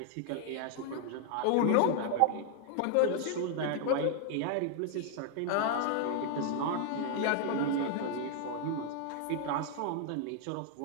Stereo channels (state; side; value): different; both; correlation 0.00